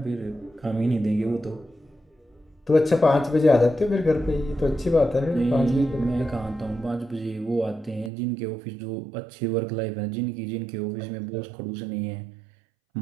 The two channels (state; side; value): drops out; left; at 8.1 s